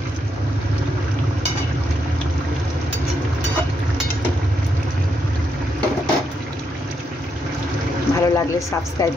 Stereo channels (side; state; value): both; normal; correlation 0.79